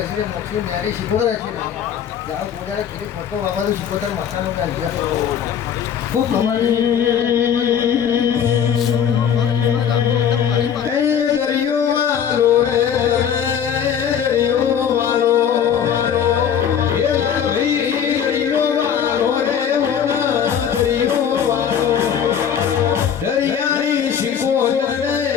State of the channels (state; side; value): quieter; right; 8.3 dB